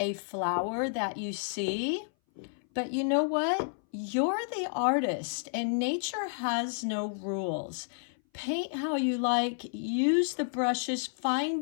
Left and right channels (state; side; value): silent; right; 57 dB below the other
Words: flower that you see, but you know what? you're the artist and nature has no rules. Paint how you like, use the brushes,